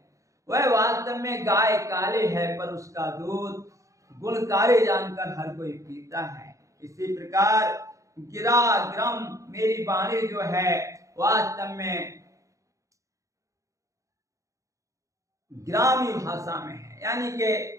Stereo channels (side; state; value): left; late; 0.15 ms